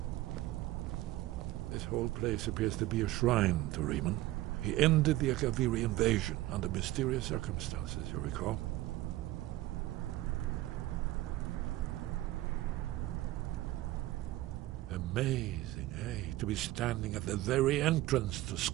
This whole place appears to be a shrine to Riemann. He ended the Akaviri invasion under mysterious circumstances, you recall? Amazing, eh? To be standing at the very entrance to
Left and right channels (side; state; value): left; quieter; 16.6 dB